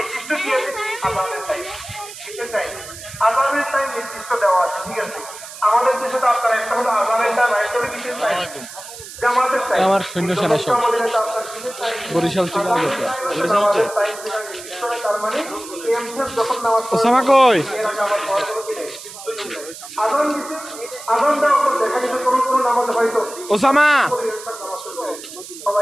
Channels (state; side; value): noise; right; hiss, 14 dB below the sound